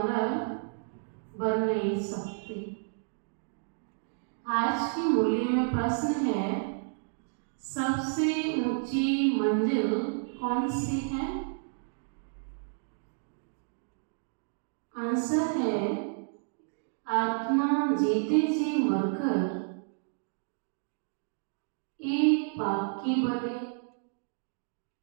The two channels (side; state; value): left; silent; digital silence